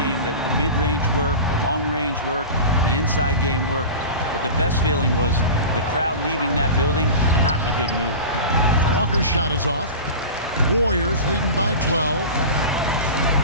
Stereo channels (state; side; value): inverted; both; correlation -0.31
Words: game that the mid-range worked, the long-range worked, the inside game worked. But the best feeling was the crowd leaving that building not in a good mood. Walker's shot is off. Warriors leading by 12.